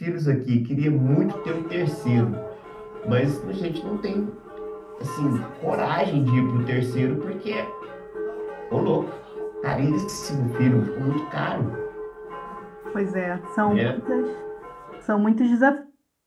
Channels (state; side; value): identical; both; correlation 1.00